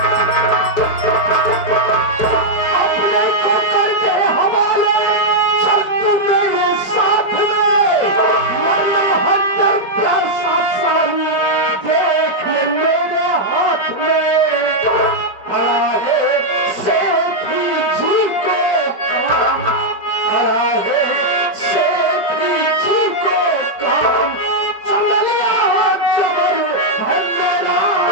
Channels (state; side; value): late; right; 4.6 ms